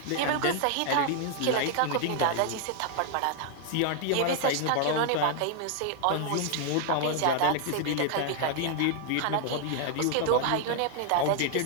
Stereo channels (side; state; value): both; different; correlation 0.00